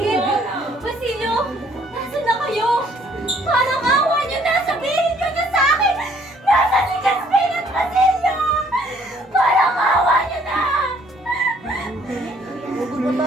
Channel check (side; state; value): both; normal; correlation 0.62